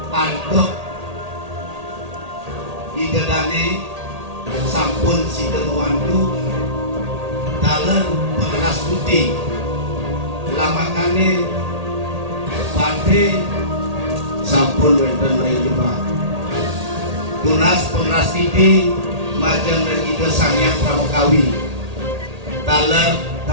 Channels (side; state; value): left; late; 1.8 ms